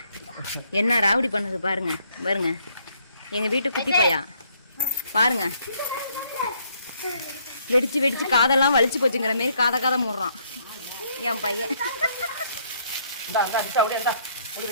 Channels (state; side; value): inverted; both; correlation -0.68